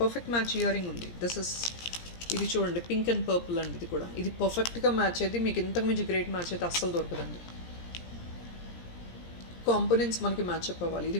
పర్ఫెక్ట్ మ్యాచ్ ఇయర్ రింగ్ ఉంది. దిస్ ఇస్, ఇది చూడండి పింక్ అండ్ పర్పుల్ అండి. ఇది కూడా ఇది పర్ఫెక్ట్గా మ్యాచ్ అయితే మీకు ఇంతకు మించి గ్రేట్ మ్యాచ్ అయితే అస్సలు దొరకదండి. కాంపోనెంట్స్ మనకి మ్యాచ్అప్ అవ్వాలి. ఇది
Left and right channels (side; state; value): right; late; 17 ms